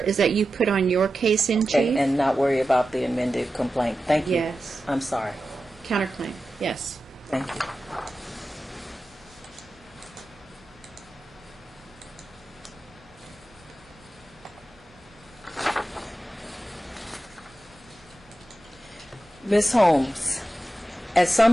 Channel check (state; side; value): normal; both; correlation 0.92